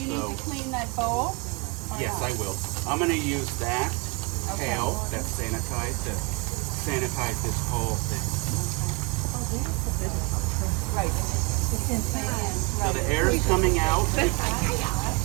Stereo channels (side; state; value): left; quieter; 30.4 dB